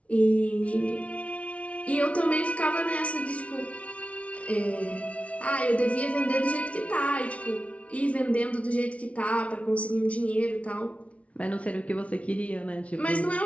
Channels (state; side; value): late; right; 0.064 ms